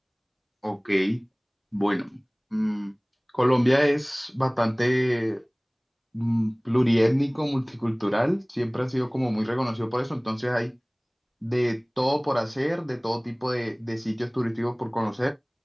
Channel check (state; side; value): identical; both; correlation 1.00